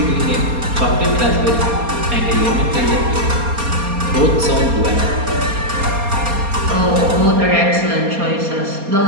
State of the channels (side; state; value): left; late; 4.2 ms